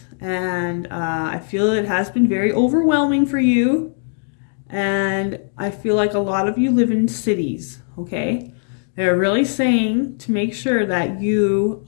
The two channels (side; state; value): right; silent; digital silence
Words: and I feel it has been very overwhelming for you. And I feel like a lot of you live in cities, okay? They're really saying to make sure that you